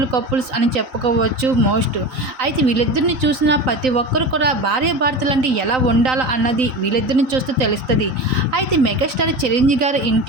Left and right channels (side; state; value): left; late; 3.9 ms